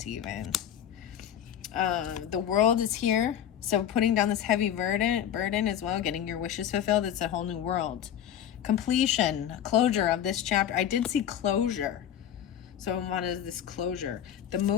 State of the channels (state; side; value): quieter; right; 10.0 dB